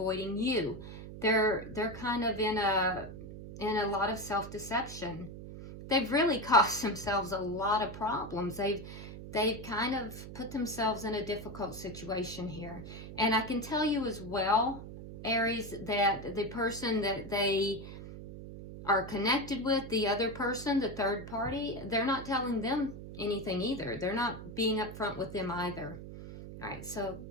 you. They're kind of in a lot of self-deception. They've really caused themselves a lot of problems. They've kind of put themselves in a difficult situation here. And I can tell you as well, Aries, that the person that they are connected with, the other person, the third party, they're not telling them anything either. They're not being upfront with them either. All right, so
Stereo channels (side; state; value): right; noise; hum, 11 dB below the sound